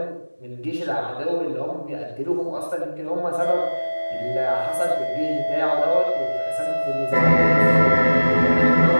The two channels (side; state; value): both; inverted; correlation -1.00